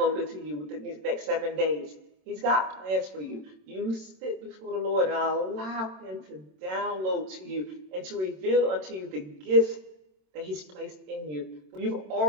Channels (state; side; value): late; left; 27 ms